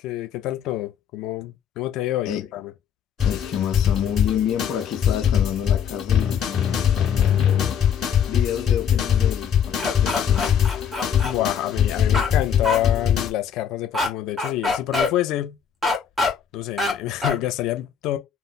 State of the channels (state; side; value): quieter; right; 8.2 dB